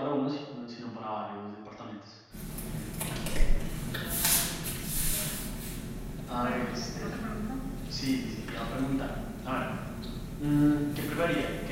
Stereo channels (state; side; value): identical; both; correlation 1.00